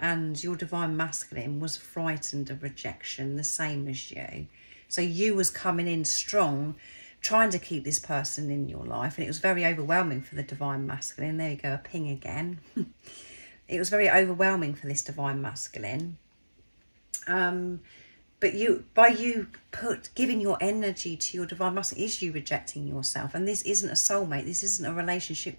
your divine masculine was frightened of rejection, the same as you. So you was coming in strong, trying to keep this person in your life. And it was very overwhelming for the Divine Masculine. There you go, a ping again. It was very overwhelming for this Divine Masculine. But by you giving your energy to your Divine Masculine, is you rejecting yourself. And this isn't a soulmate. This isn't a relationship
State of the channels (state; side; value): inverted; both; correlation -1.00